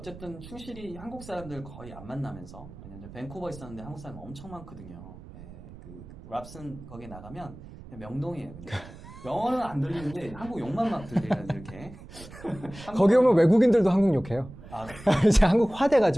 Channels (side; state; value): right; noise; rumble, 16 dB below the sound